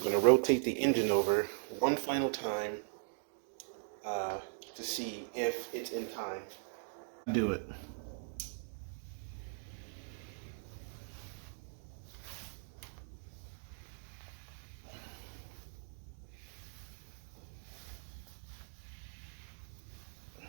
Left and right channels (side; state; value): left; silent; digital silence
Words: to rotate the engine over one final time to see if it's in time. Do it.